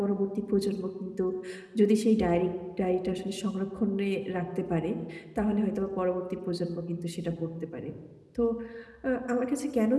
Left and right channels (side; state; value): both; identical; correlation 1.00